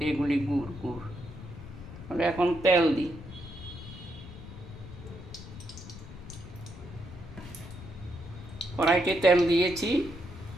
এগুলি গুড় গুড় তাহলে এখন তেল দিই। কড়াইতে তেল দিয়েছি,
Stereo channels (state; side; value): noise; left; rumble, 14 dB below the sound